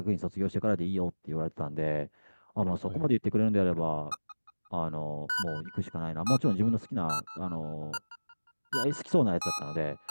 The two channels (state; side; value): inverted; both; correlation -1.00